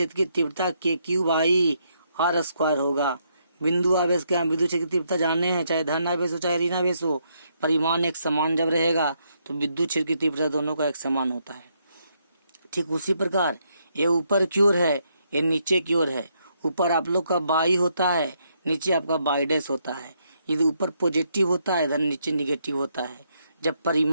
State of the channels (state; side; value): inverted; both; correlation -0.76